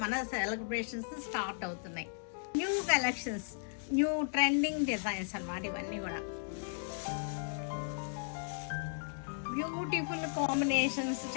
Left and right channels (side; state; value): right; silent; digital silence